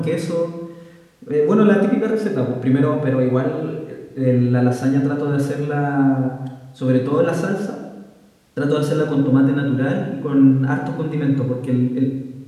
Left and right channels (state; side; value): identical; both; correlation 1.00